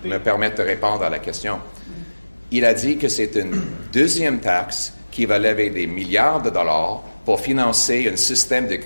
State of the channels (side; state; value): both; inverted; correlation -1.00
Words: me permettre de répondre à la question, il a dit que c'est une deuxième taxe qui va lever des milliards de dollars pour financer un système de